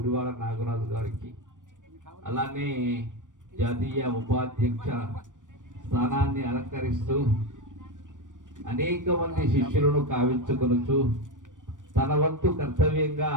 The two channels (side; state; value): left; late; 0.87 ms